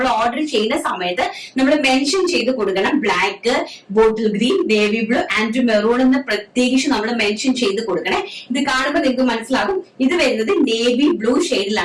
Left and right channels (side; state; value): both; identical; correlation 1.00